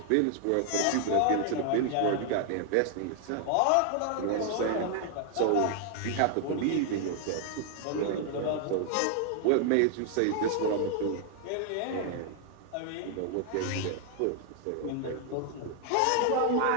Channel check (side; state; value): both; different; correlation 0.00